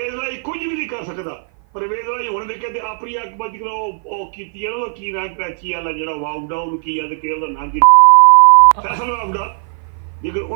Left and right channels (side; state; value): left; silent; 55 dB below the other